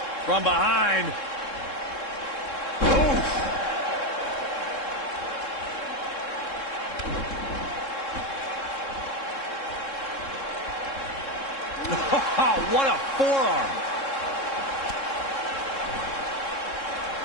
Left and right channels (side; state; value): right; late; 3.7 ms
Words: From behind. Oh, what a forearm.